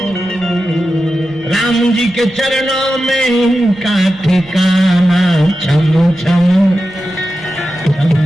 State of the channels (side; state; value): right; noise; rumble, 25 dB below the sound